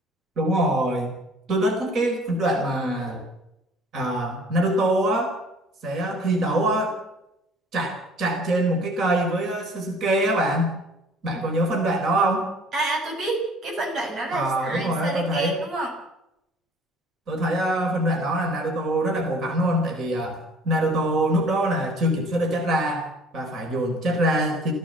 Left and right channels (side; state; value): both; normal; correlation 0.51